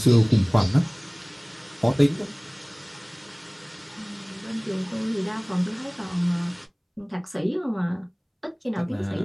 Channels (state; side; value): identical; both; correlation 1.00